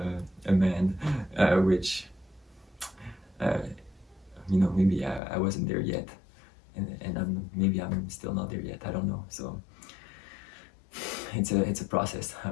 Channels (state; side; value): drops out; right; at 5.2 s